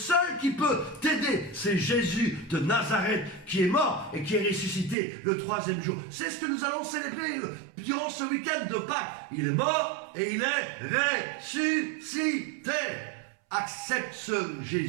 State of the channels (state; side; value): drops out; left; at 5.0 s